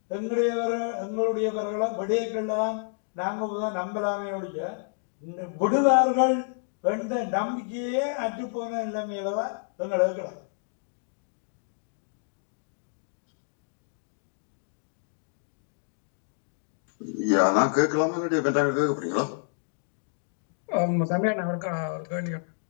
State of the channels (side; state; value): right; silent; digital silence